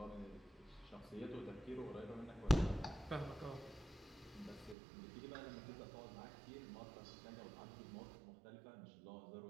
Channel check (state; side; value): drops out; left; at 4.8 s